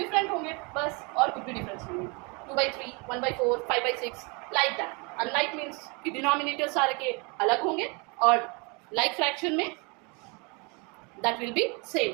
होंगे, बस, और कुछ भी डिफरेंस नहीं है। 2/3 1/4 5/6 लाइक दैट। अनलाइक मीन्स कि डिनोमिनेटर सारे के अलग होंगे, और लाइक फ्रैक्शन में that will be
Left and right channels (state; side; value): quieter; left; 30.8 dB